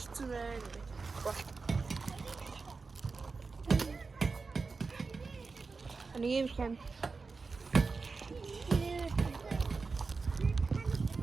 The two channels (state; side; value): quieter; left; 4.4 dB